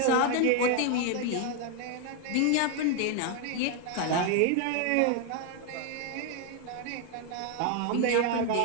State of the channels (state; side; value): different; both; correlation 0.00